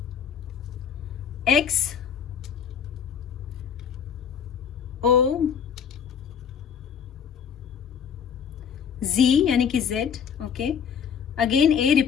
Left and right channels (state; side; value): quieter; right; 7.5 dB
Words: एक्स, ओ, Z यानी कि Z, ओके। अगेन ए,